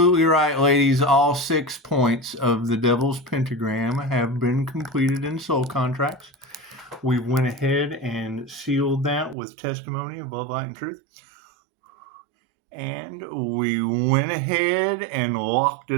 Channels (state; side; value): drops out; left; at 9.3 s